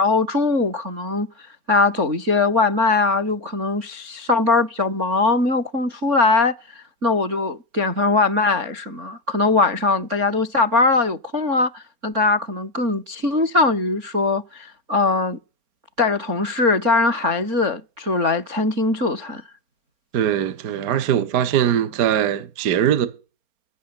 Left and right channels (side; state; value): left; late; 4.3 ms